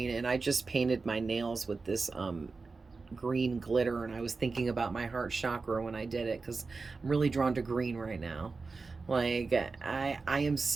and I just painted my nails with this green glitter, and I was thinking about my heart chakra when I did it, because I'm really drawn to green right now. Like, I am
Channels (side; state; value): left; quieter; 4.2 dB